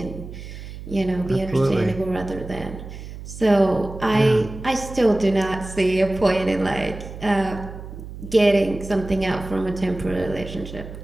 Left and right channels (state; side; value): noise; right; hum, 12 dB below the sound